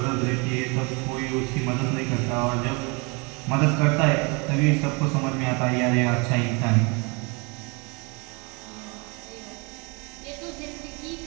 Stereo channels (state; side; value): quieter; left; 30.4 dB